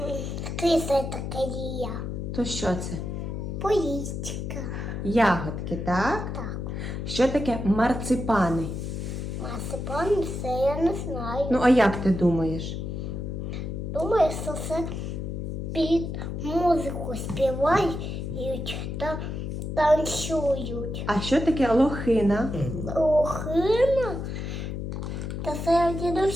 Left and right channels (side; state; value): left; noise; hum, 4 dB below the sound